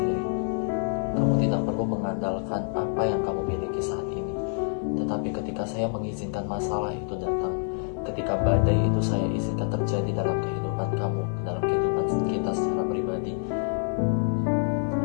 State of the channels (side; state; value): right; silent; 60 dB below the other